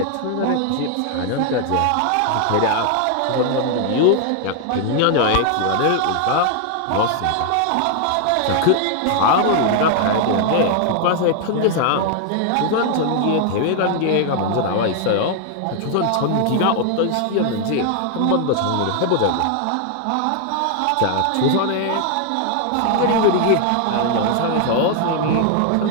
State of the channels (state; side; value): different; both; correlation 0.00